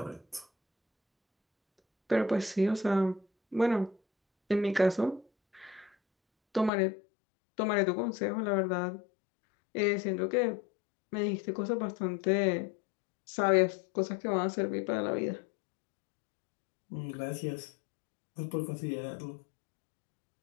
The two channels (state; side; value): drops out; right; at 6.7 s